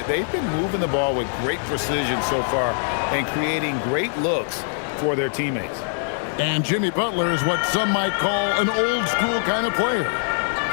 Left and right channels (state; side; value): silent; right; 55 dB below the other